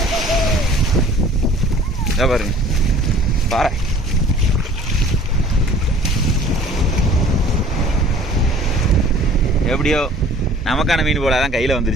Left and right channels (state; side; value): normal; both; correlation 0.50